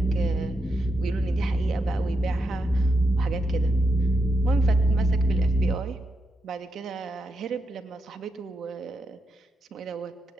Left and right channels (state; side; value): normal; both; correlation 0.84